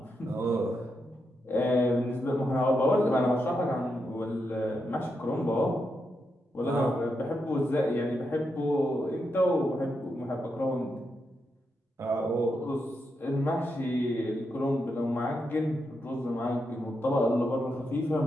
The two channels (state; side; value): normal; both; correlation 0.84